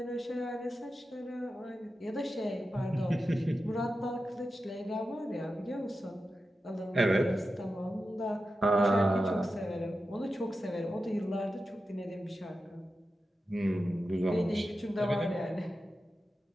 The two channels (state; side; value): normal; both; correlation 0.91